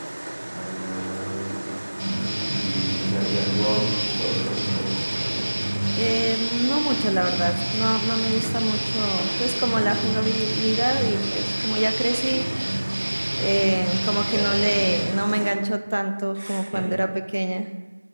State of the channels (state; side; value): inverted; both; correlation -1.00